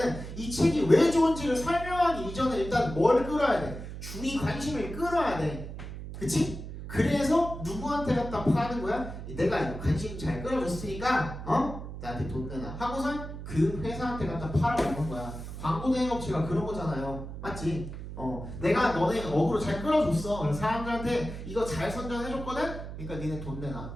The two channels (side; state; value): right; noise; hum, 9 dB below the sound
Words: 이 책이 왜 좋은지를 설명하기 이전에 일단 뭘 끌어야 돼? 주의 관심을 끌어야 돼. 그치? 그래서 누구한테 갖다 파는 거야? 내가 관심 잘 끌어줬으니까 나한테 돈 내놔 하고선 그 회사한테 갖다 팔아먹는 거야. 광고 대행업체가 그런 거잖아요. 맞지? 내가 너네 어그로 잘 끌어줬어. 그래서 사람들한테 이거 잘 선전해줬거든? 그러니까 니네 돈